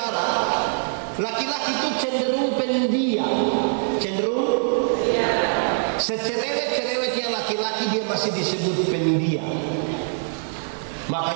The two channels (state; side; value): silent; left; 63 dB below the other